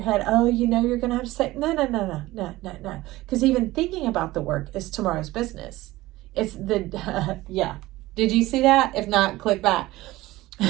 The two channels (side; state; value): left; quieter; 18.0 dB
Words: head, oh, you know, you're going to have to say, no. Because even thinking about the work is tomorrow's business. It's the, yeah. Did you see that? If not, click back.